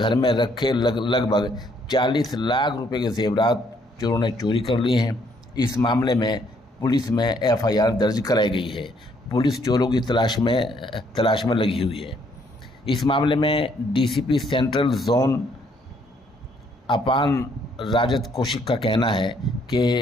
में रखे लगभग 40 लाख रुपए के ज़ेवरात चोरों ने चोरी कर लिए हैं। इस मामले में पुलिस में FIR दर्ज कराई गई है। पुलिस चोरों की तलाश में लगी हुई है। इस मामले में DCP सेंट्रल जोन अपान राजत कौशिक का कहना है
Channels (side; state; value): both; normal; correlation 0.68